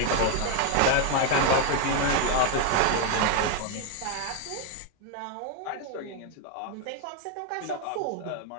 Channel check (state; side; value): different; both; correlation 0.01